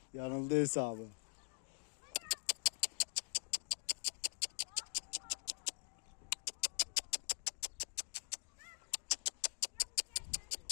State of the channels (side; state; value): right; silent; digital silence